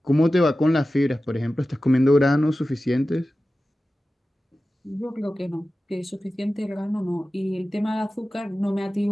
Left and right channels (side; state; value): both; normal; correlation 0.95